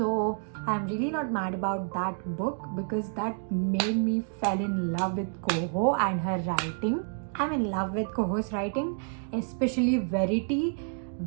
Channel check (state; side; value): silent; left; 59 dB below the other